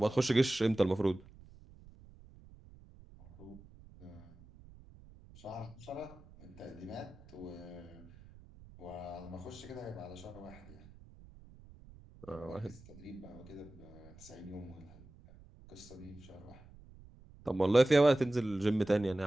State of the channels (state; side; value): noise; right; rumble, 21 dB below the sound